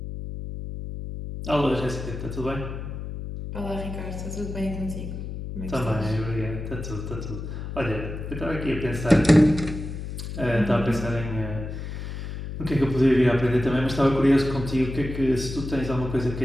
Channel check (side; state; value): left; noise; hum, 7 dB below the sound